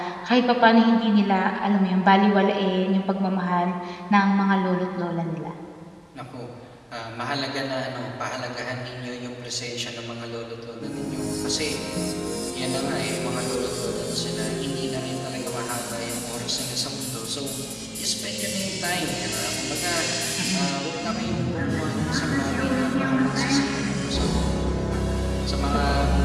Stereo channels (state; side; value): identical; both; correlation 1.00